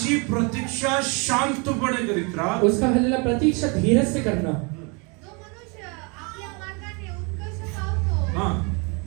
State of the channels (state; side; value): quieter; left; 31.8 dB